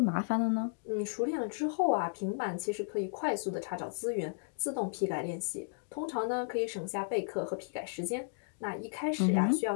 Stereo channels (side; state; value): right; silent; digital silence